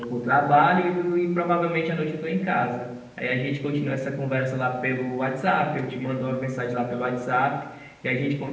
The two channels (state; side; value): identical; both; correlation 1.00